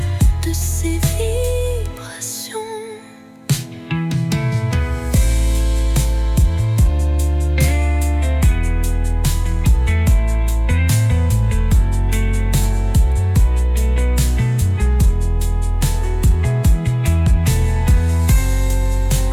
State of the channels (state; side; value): identical; both; correlation 1.00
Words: de ses vibrations.